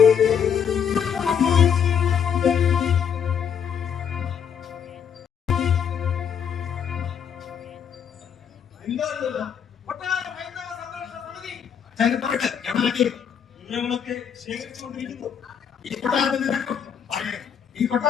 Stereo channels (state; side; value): quieter; right; 7.8 dB